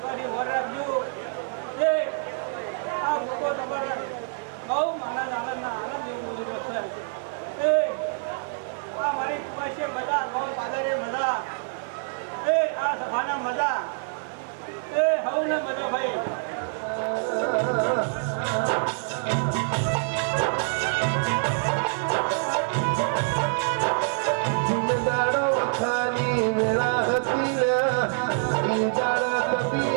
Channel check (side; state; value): left; silent; 58 dB below the other